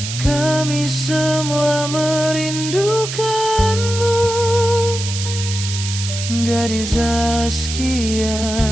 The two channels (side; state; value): right; noise; hiss, 6 dB below the sound